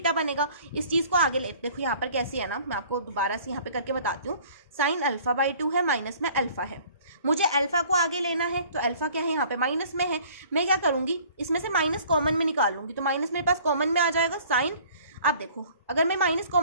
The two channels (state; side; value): inverted; both; correlation -0.52